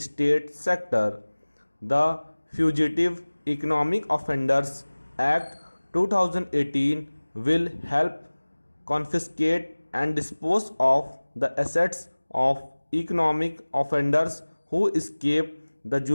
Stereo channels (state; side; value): inverted; both; correlation -1.00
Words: sector. The Fugitive Economic Offenders Act 2018 will help confiscate and dispose of the assets of economic offenders who escape the